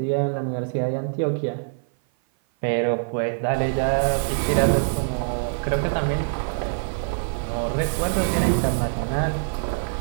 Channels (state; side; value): silent; left; 55 dB below the other